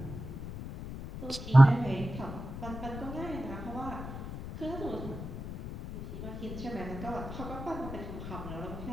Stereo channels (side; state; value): left; noise; rumble, 9 dB below the sound